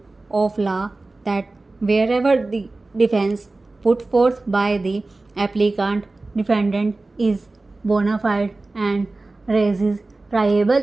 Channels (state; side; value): quieter; left; 3.2 dB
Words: of law that wherever the defense put forth by the applicant defendant is bona fide and raises